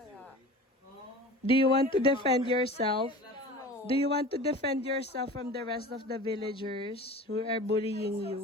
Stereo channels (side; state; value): both; normal; correlation 0.37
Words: Do you want to defend yourself? Do you want to defend yourself from the rest of the villagers who are bullying